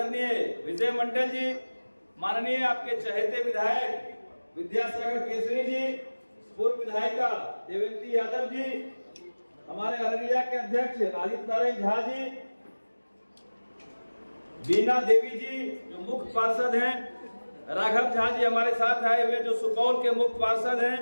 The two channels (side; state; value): both; inverted; correlation -1.00